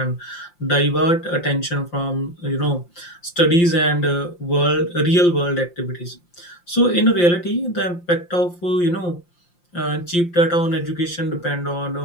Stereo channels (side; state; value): right; late; 5.7 ms